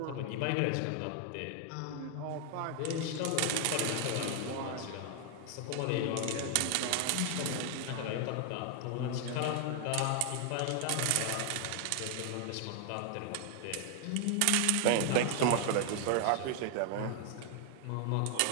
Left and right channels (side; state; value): both; different; correlation 0.00